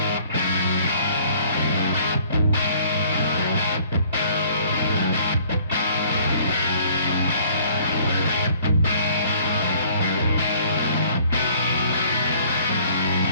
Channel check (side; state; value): both; inverted; correlation -0.56